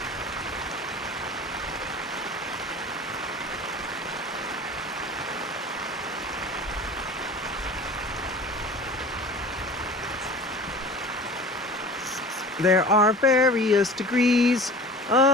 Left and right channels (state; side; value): normal; both; correlation 0.40